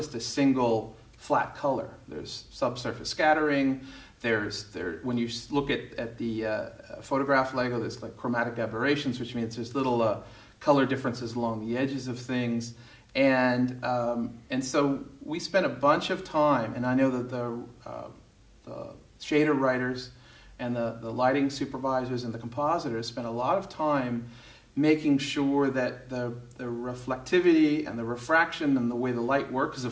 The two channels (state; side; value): identical; both; correlation 1.00